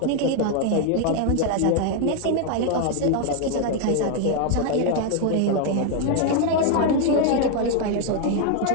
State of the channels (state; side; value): different; both; correlation 0.00